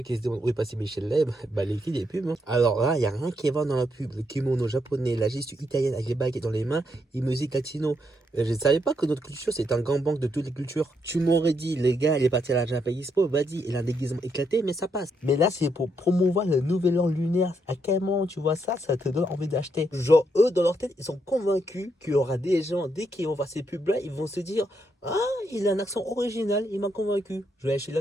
qui se demandent où est passé Michel Leb, bah les filles des pubs. Hein. Alors là, il n'y a rien qui va dans la pub. Le kimono japonais, la gestu italienne avec les baguettes dans les mains, et musique latino. Je ne savais pas que notre culture c'est un grand banque de toutes les cultures. Tu m'aurais dit, les gars, il est parti à la Japan Expo, vas-y, il a un déguisement éclaté, mais ça passe. Mais là, c'est pour promouvoir le nouvel an lunaire. À quel moment tu vois ça, ça te donne envie d'acheter. Genre, eux, dans leur tête, ils sont convaincus qu'il y aura des gens, dès qu'ils vont voir ces pubs-là, ils vont se dire, ah, il a un accent original, il m'a convaincu. Je vais acheter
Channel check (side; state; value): both; normal; correlation 0.78